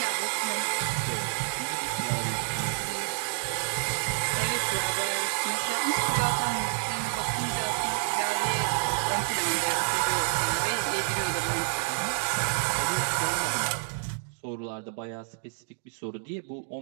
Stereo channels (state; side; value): silent; left; digital silence